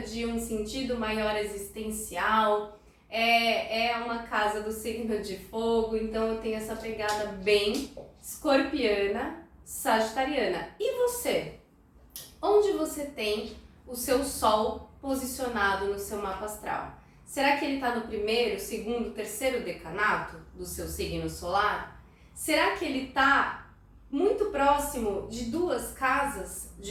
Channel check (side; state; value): both; identical; correlation 1.00